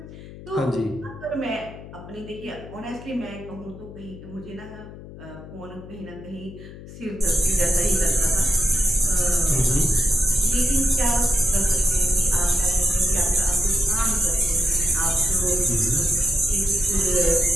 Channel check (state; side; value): noise; left; hum, 15 dB below the sound